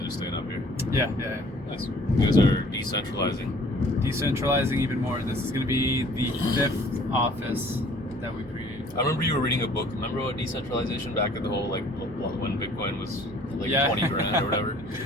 are staying up here. Yeah. Nice. You guys are decentralizing. Decentralizing even more. This is going to be the 5th office that we created. I remember you were reading a book. Remember about decentralization back at the whole when Bitcoin was like Yeah. 20 grand or whatever.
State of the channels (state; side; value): normal; both; correlation 0.54